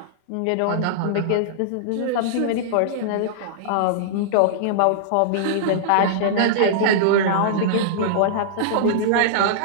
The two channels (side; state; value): both; different; correlation -0.02